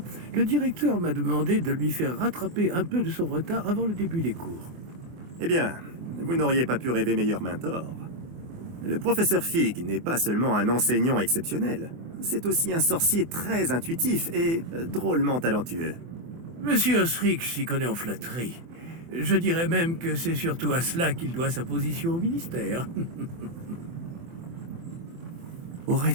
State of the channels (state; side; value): late; left; 24 ms